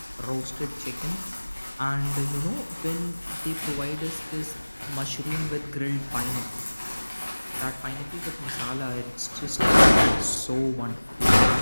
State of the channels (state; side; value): inverted; both; correlation -1.00